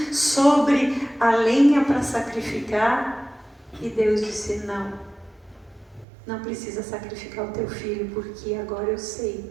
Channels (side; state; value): left; drops out; at 6.1 s